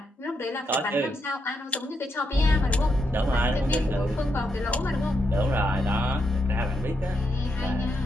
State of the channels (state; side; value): normal; both; correlation 0.81